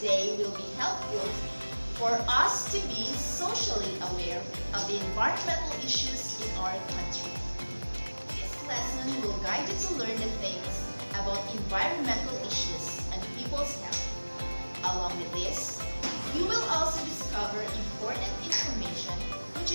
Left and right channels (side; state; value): both; inverted; correlation -1.00